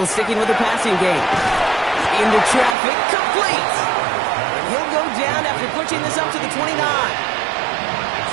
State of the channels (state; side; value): drops out; left; at 2.8 s